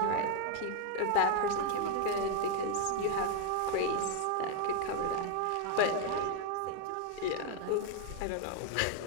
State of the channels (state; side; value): different; both; correlation 0.01